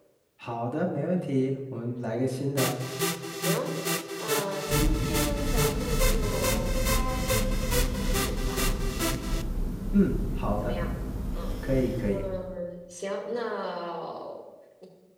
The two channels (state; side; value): identical; both; correlation 1.00